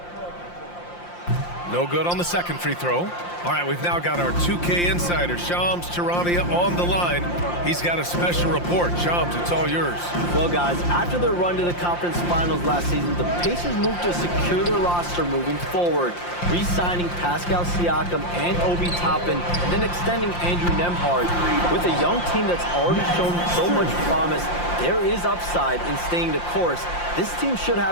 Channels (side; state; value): right; late; 5.7 ms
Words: No good on the second free throw. All right, we've now got our 2K insider, Shams Charania, on the line. He's got a special report. Shams, it's all yours. Well, guys, after their run to the conference finals last season, the Pacers moved to secure their roster moving forward, re-signing Pascal Siakam and Obi Toppin, and then extending Andrew Nembhard. With a young team that's already shown so much promise, there is upside in staying the course. This team should